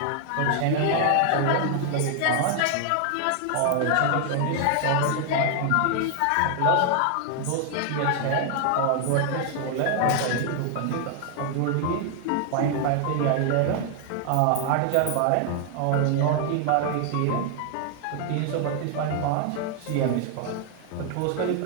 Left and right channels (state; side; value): different; both; correlation 0.00